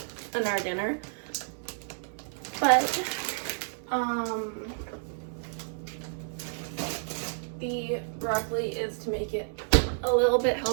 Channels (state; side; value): silent; left; 58 dB below the other